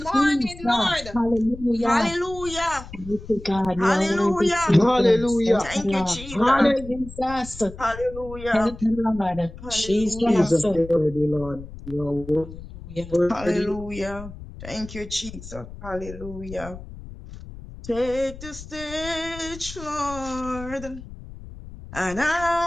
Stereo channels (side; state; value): left; noise; rumble, 14 dB below the sound